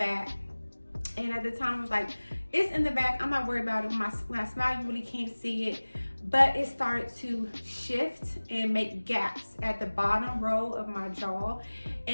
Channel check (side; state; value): both; inverted; correlation -1.00